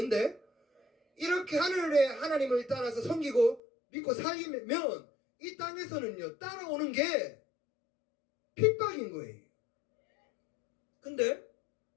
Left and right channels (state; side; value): drops out; right; at 3.6 s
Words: 이렇게 하늘의 하나님을 따라서 섬기고 믿고 살면 이 땅에서는요 따라오는 게 핍박인 거예요. 근데